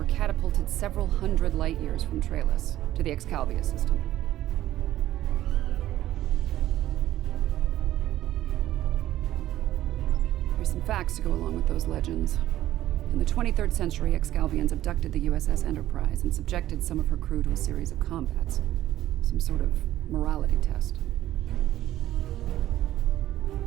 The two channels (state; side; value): quieter; left; 13.8 dB